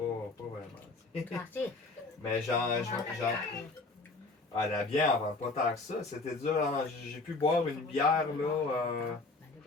Mais ah, la bière, on vend pas tant que ça. C'était dur. Hein. J'ai pu boire une bière, là.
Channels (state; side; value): quieter; right; 3.5 dB